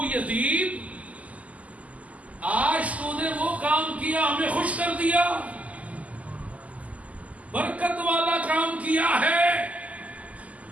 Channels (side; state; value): left; late; 0.072 ms